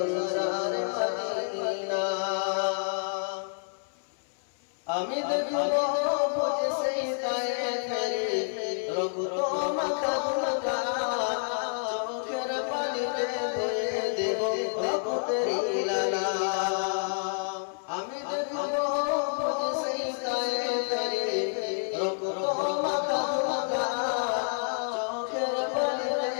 মদিনা আমি দেখবো বুঝে সেই তায়ে ফেরি রক্ত মাখা গুলগা চোখের পানিতে ধুয়ে দেব রক্তের লালা আমি দেখবো বুঝে সেই তায়ে ফেরি রক্ত মাখা গুলগা চোখের পানিতে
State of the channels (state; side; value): silent; right; 59 dB below the other